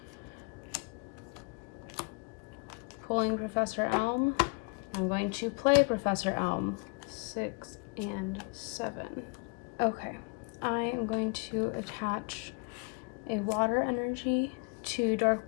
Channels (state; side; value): quieter; right; 33.3 dB